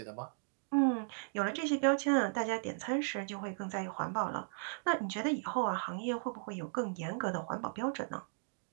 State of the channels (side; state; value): left; silent; digital silence